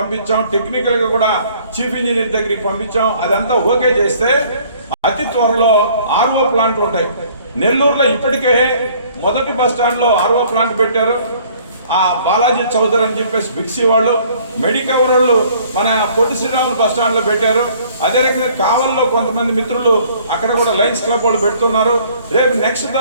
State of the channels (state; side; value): inverted; both; correlation -0.58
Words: టెక్నికల్ గా కూడా చీఫ్ ఇంజనీర్ దగ్గరికి పంపించాం. అదంతా ఓకే చేస్తే అతి త్వరలో ఆర్ఓ ప్లాంట్లు ఉంటాయి. నెల్లూరులో ఇప్పటికే మొదటి బస్ స్టాండ్ లో ఆర్ఓ ప్లాంట్ పెట్టారు. ఆ బాలాజీ చౌదరి అని చెప్పేసి బిక్సీ వాళ్ళు, మెడికవర్ వాళ్ళు మన పొట్టి శ్రీరాములు బస్ స్టాండ్ లో పెట్టారు. అదే రకంగా కావల్లో కొంతమంది మిత్రులు అక్కడ కూడా లయన్స్ క్లబ్ వాళ్ళు పెడుతున్నారు. రేపు నెక్స్ట్